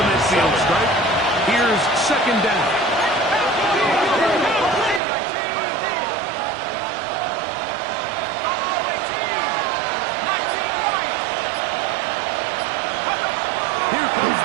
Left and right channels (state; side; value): drops out; left; at 5.0 s